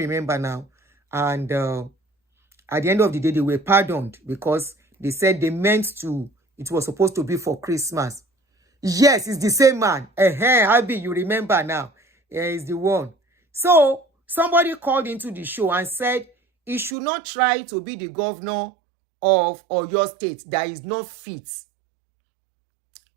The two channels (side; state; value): left; drops out; at 16.9 s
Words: now. And at the end of the day, they were pardoned because they said it was supposed to be for Christmas. Yes, it's the same man. Abi, you remember now. He's the one. So somebody called into the show and said he should not try to be the governor of Oyo State that is not fit.